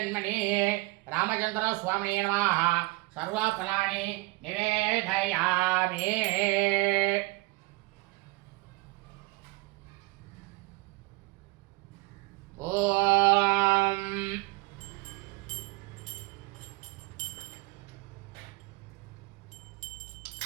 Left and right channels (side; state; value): left; quieter; 23.6 dB